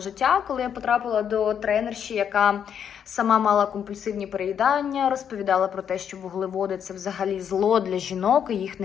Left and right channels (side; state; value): right; quieter; 8.3 dB